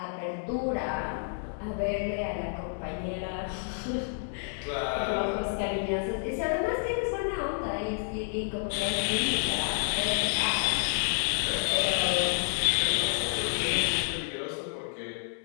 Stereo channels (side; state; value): right; silent; digital silence